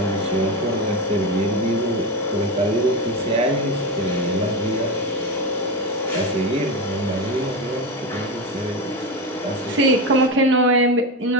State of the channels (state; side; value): normal; both; correlation 0.18